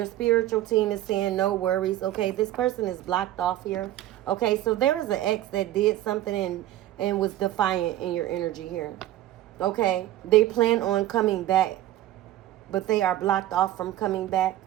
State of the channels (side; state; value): left; quieter; 13.8 dB